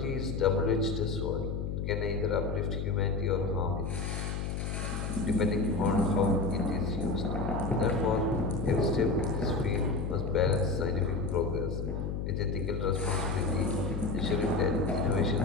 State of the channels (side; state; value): left; noise; hum, 3 dB below the sound